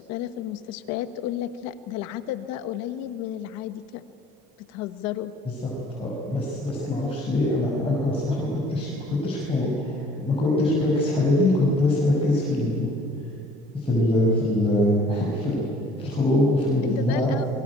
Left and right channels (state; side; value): normal; both; correlation 0.54